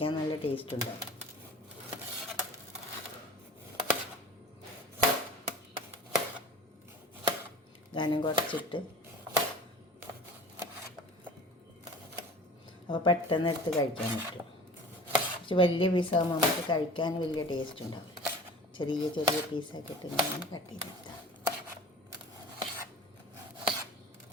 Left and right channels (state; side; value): normal; both; correlation 0.41